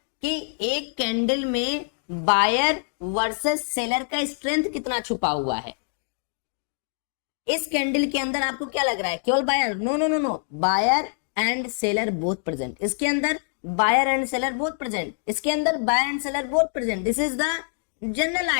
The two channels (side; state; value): right; silent; 62 dB below the other